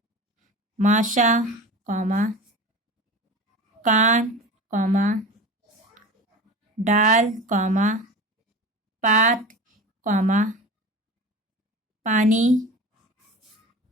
माशा, कॉमा, कान, कॉमा, डाल, कॉमा, पात, कॉमा, पानी,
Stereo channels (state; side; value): normal; both; correlation 0.32